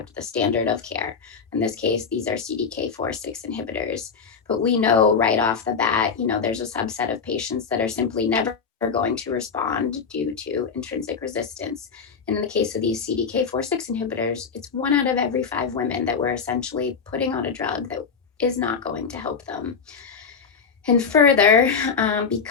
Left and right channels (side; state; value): right; quieter; 5.8 dB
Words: the standard of care. In this case, these are CDK4/6 inhibitors. But we know right off the bat, there's a subset of patients that are simply never going to respond due to intrinsic resistance. And in the case of these CDK4/6 inhibitors, it's 1 out of every 5 women that we're essentially putting on a drug that is not going to help them. And further,